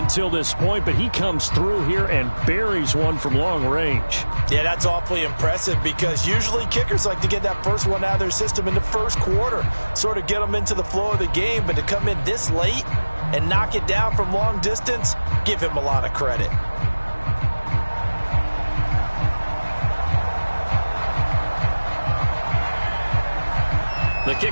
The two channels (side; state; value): both; inverted; correlation -1.00